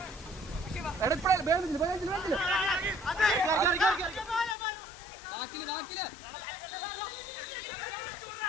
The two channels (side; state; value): right; drops out; at 4.5 s